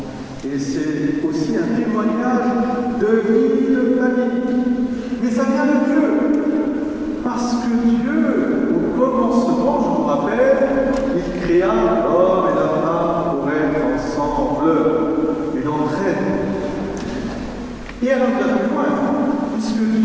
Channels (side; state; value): both; identical; correlation 1.00